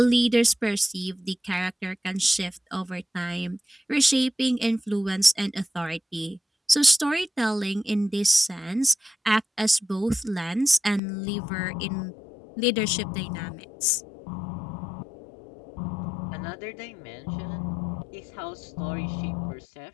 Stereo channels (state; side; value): drops out; right; at 11.0 s